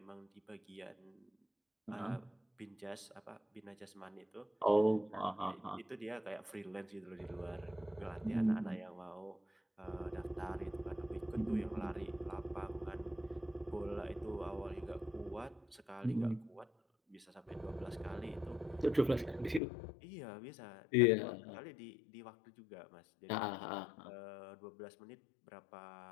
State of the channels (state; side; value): drops out; right; at 19.6 s